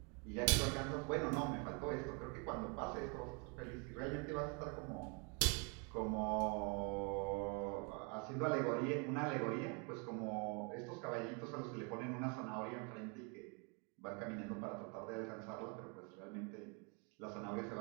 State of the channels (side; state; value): left; quieter; 34.4 dB